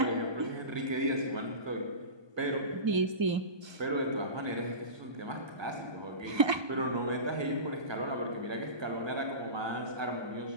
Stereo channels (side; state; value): left; late; 1.2 ms